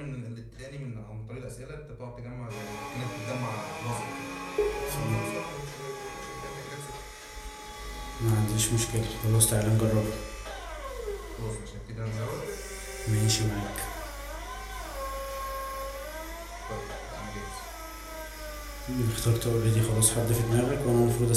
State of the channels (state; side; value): identical; both; correlation 1.00